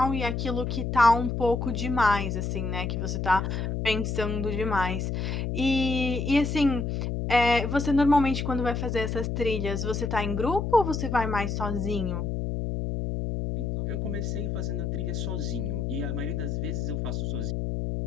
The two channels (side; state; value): left; noise; hum, 2 dB below the sound